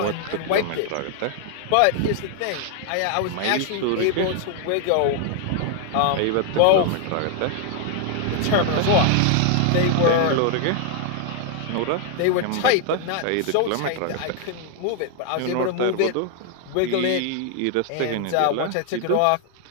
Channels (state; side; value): different; both; correlation 0.00